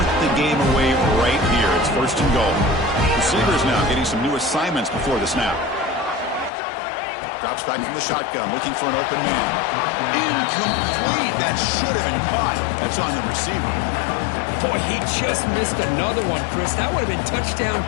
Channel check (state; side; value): drops out; right; at 6.5 s